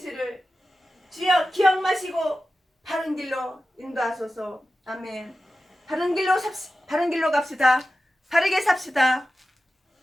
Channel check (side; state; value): both; normal; correlation 0.93